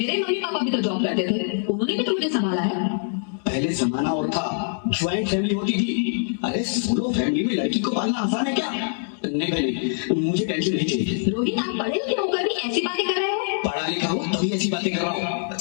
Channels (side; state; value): right; silent; digital silence